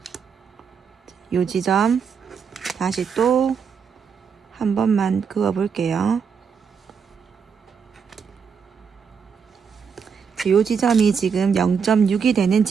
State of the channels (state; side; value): quieter; left; 6.4 dB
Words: 요 지점 다시 또 한 번만 그어 볼게요. 요 지점이 지금 0.6이 되는